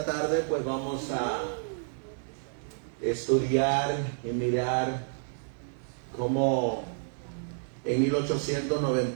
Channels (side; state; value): left; silent; 58 dB below the other